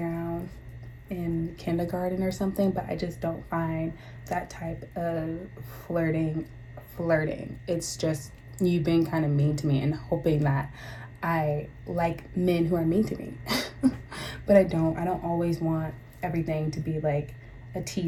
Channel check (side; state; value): both; identical; correlation 1.00